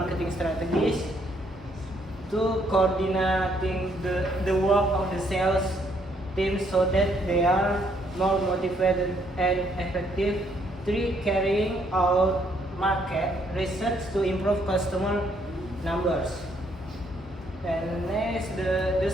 strategies. 2, coordinating the work of the sales team so that they are more motivated and effective. 3, carrying out market research to improve customer numbers. And next, the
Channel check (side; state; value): both; normal; correlation 0.69